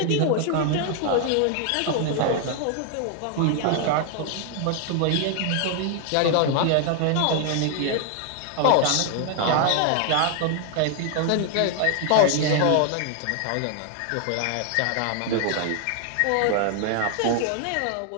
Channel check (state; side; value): different; both; correlation 0.00